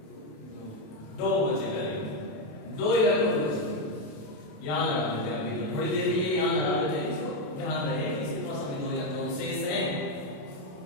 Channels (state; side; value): late; right; 27 ms